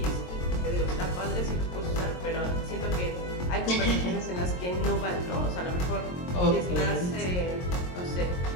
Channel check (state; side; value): late; right; 22 ms